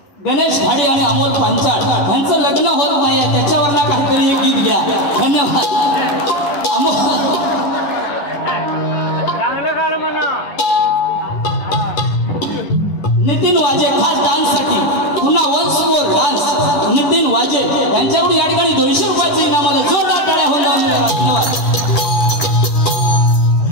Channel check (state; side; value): late; right; 10 ms